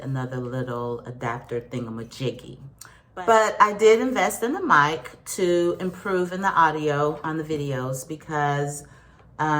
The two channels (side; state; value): both; identical; correlation 1.00